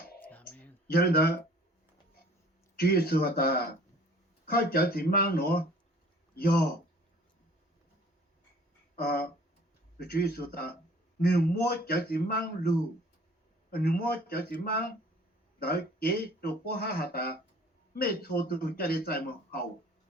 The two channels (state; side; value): normal; both; correlation 0.51